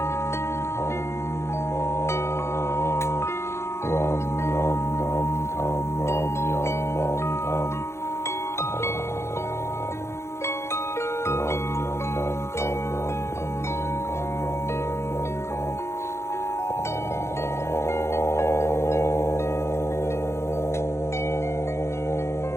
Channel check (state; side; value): late; right; 0.13 ms